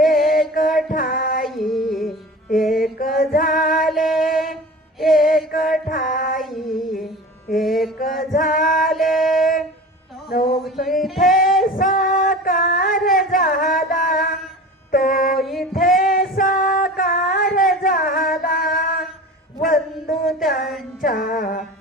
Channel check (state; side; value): normal; both; correlation 0.36